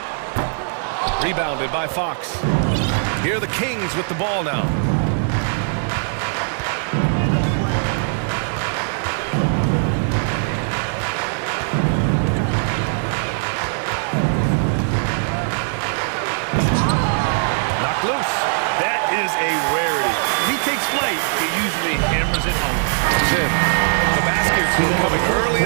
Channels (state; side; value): silent; left; 59 dB below the other